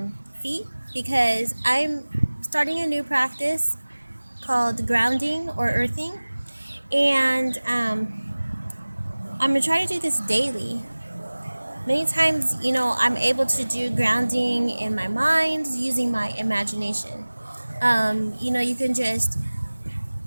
feet because I'm starting a new practice called grounding or earthing, and I'm going to try to do this daily. Many times, I'm able to do grounding in my mind using my imagination. You can just,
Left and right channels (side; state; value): both; inverted; correlation -1.00